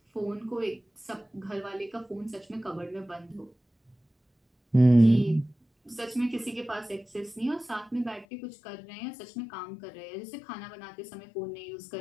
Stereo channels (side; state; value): right; drops out; at 8.2 s